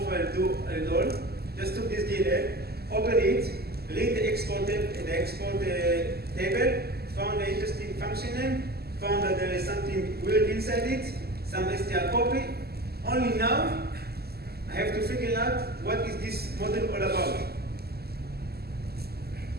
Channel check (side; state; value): left; late; 0.46 ms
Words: do at all. Just took this DLL, opened it, read the export table, found an interesting function name, found that there is something weird inside it, some str copy. Only now, I have to figure out what is this model all about.